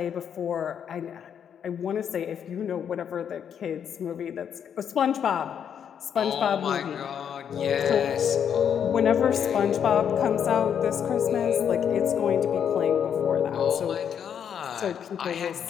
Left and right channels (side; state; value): right; quieter; 8.3 dB